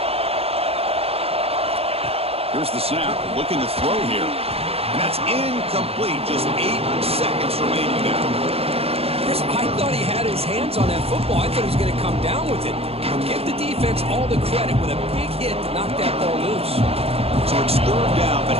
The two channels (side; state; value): left; late; 0.29 ms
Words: Here's the snap, looking to throw here. And that's incomplete. Just 8 seconds remaining now. Chris, I thought he had his hands on that football. I thought he was going to come down with it. But give the defense all the credit with a big hit to knock that ball loose. So it's third down, but